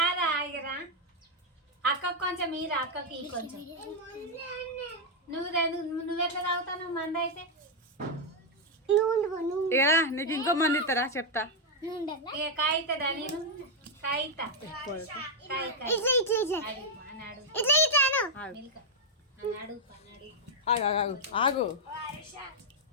రా ఇగరా. అక్కకు కొంచెం ఈరా, అక్కకి కొంచెం. నువ్వెట్లా తాగుతావు మంద అయితే? ఇగరా నీకు ఇంకో మంది ఇస్తారా చెప్తా. ఇక కాయితదా? నేను కాయితా. ఆగు.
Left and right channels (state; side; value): normal; both; correlation -0.01